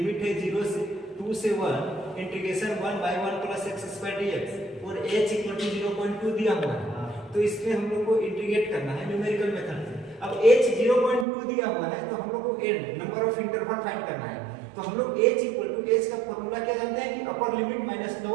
है 0 से 2 से 1 इंटीग्रेशन 1 बाई 1+x² dx और h इक्वल टू 0.2 दिया हुआ है। तो इसमें हम लोग को इंटीग्रेट करना है न्यूमेरिकल मेथड से। अब h 0.2 दिया हुआ है तो हम लोग को n number of interval find करना है। तो हम लोग h इक्वल टू h का फॉर्मूला क्या जानते हैं कि upper limit minus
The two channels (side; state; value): left; drops out; at 11.2 s